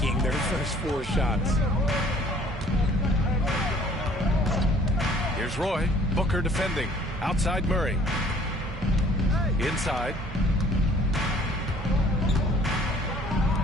their first 4 shots. Here's Roy. Booker defending. Outside Murray. Inside.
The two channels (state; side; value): normal; both; correlation 0.55